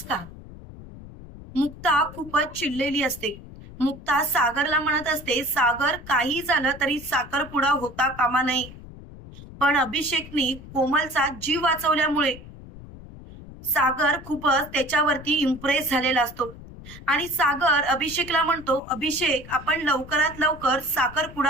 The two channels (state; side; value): noise; left; rumble, 16 dB below the sound